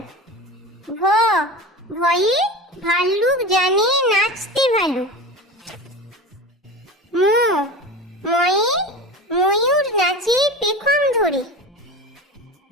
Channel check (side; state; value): both; normal; correlation 0.29